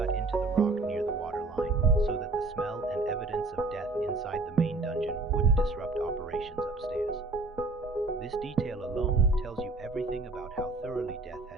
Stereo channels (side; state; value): left; quieter; 3.4 dB